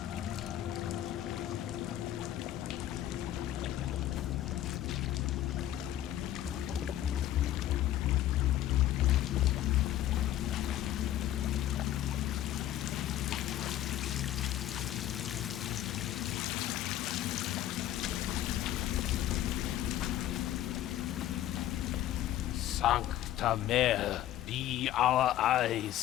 Sancta Mare, be our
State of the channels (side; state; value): right; quieter; 12.8 dB